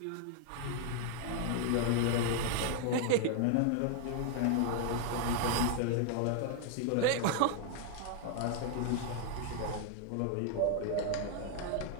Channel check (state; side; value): different; both; correlation 0.00